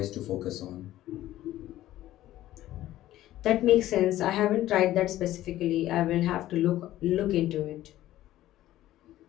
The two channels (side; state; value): right; quieter; 14.4 dB